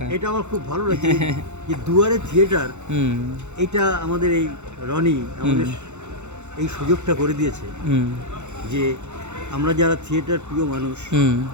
এটা আমার খুব ভালো লাগছে যে দুয়ারে থিয়েটার, এটা আমাদের এই রনি আমাদের এই সুযোগটা করে দিয়েছে যে আমরা যারা থিয়েটার প্রিয় মানুষ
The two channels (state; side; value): late; left; 0.83 ms